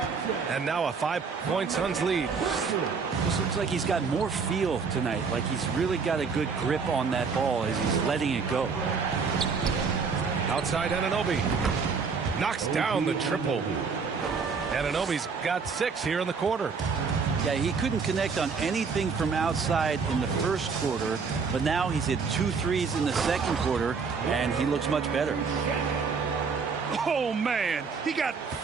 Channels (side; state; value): left; quieter; 5.3 dB